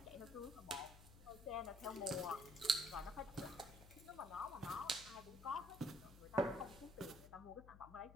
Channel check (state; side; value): noise; left; hum, 16 dB below the sound